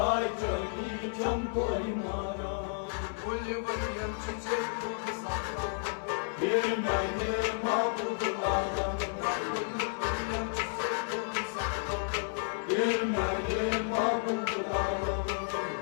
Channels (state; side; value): silent; right; digital silence